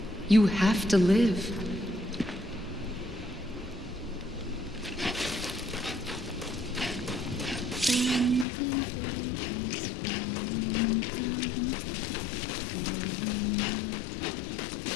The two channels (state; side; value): drops out; right; at 8.5 s